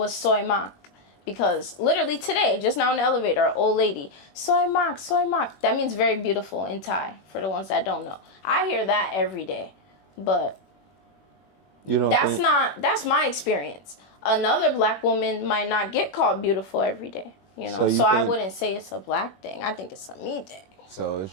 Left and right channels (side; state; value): right; late; 21 ms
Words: soy mak. Because literally today, just now in the elevator, an old lady, soy mak, soy mak. That means very beautiful in Thai, for the ones that don't know. I hear that every day. But You don't think... that's my experience. Another black woman might not get called beautiful every day, you know. So I wouldn't say it's a black thing. I think it's a me thing. So it's